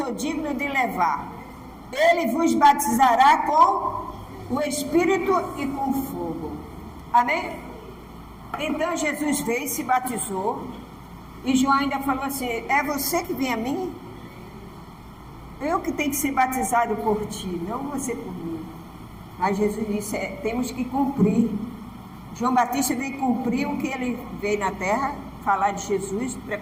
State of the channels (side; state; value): both; identical; correlation 1.00